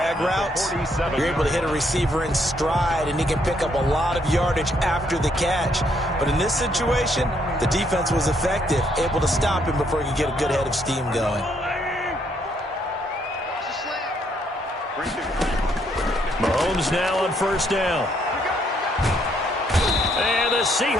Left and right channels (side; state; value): both; normal; correlation 0.71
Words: routes, you're able to hit a receiver in stride, and he can pick up a lot of yardage after the catch. But in this situation, the defense was effective, able to stop him before he could get a good head of steam going. Mahomes now on first down. And the